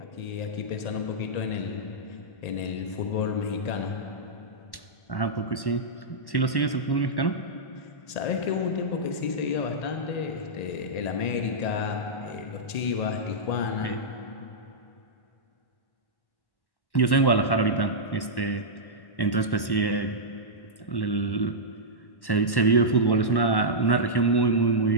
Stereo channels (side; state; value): right; late; 1.1 ms